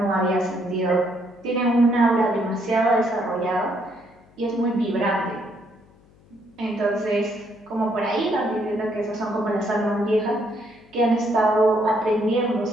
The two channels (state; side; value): noise; left; hum, 29 dB below the sound